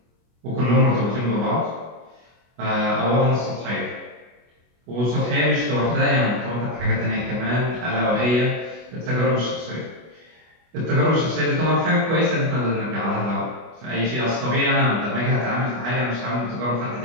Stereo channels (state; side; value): late; left; 24 ms